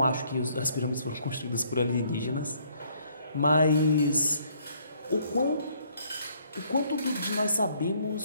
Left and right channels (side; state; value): both; inverted; correlation -0.65